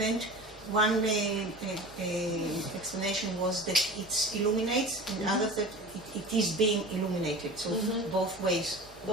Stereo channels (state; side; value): normal; both; correlation 0.36